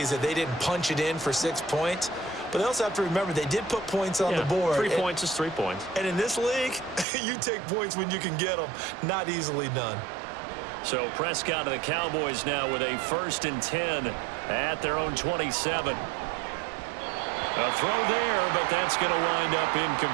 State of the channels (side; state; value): left; drops out; at 7.1 s